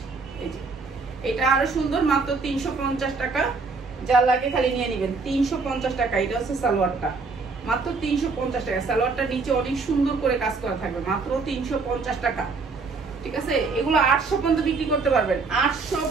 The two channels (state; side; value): quieter; left; 4.3 dB